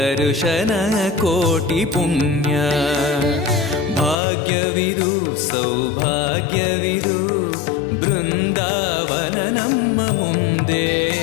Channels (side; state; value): right; drops out; at 4.2 s